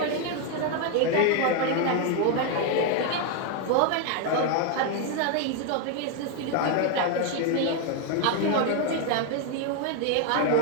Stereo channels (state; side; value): different; both; correlation 0.01